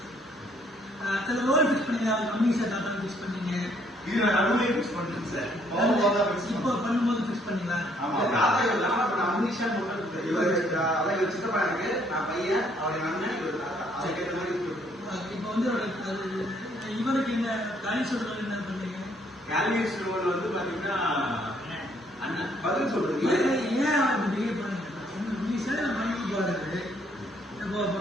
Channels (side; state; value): both; normal; correlation 0.67